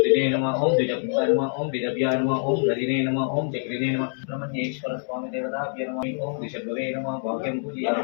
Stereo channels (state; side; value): silent; right; 62 dB below the other